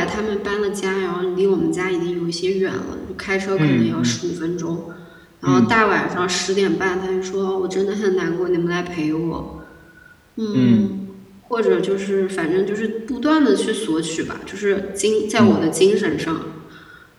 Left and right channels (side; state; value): both; identical; correlation 1.00